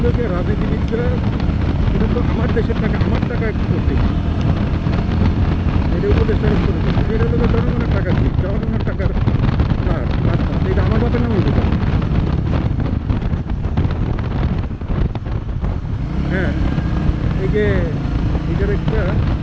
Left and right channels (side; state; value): both; identical; correlation 1.00